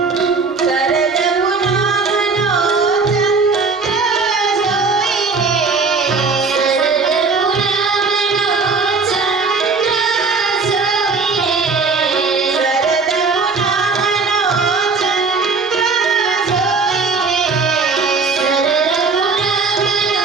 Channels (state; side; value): quieter; left; 4.5 dB